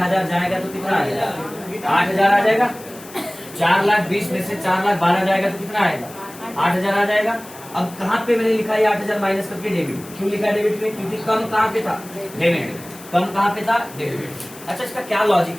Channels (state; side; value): noise; left; hiss, 18 dB below the sound